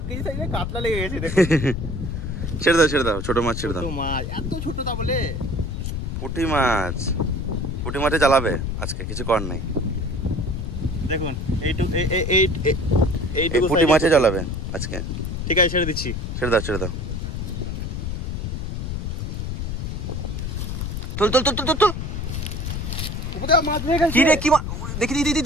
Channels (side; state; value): left; noise; rumble, 3 dB below the sound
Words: কেজি সাইজের কাতলা লেগে গেছে দেখো। ছেড়ে দাও ছেড়ে দাও, ছোট মাছ ছেড়ে দাও। ছোট মাছ, এত ছোট তা বলে? পুঁটি মাছ, পুঁটি মাছে জ্বালাবে আজকে, কিছু কর নাই। দেখুন এই পুঁটি মাছে জ্বালাবে আজকে। ঠিক আছে, ছেড়ে দিচ্ছি। ছেড়ে দাও ছেড়ে দাও। তোল তোল তোল তোল তোল। উপরে মাছ হয়ে গেছে। কি রে, কি দেখি দিদি